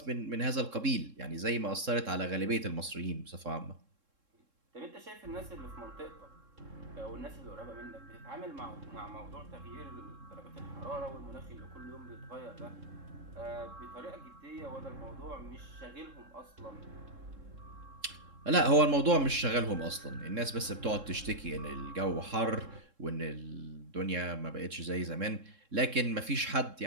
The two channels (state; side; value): late; left; 3.7 ms